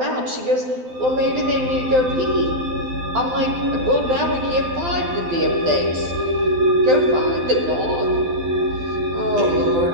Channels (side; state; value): left; late; 12 ms